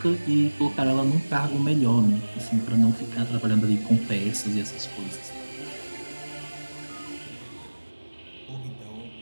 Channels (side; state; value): both; inverted; correlation -1.00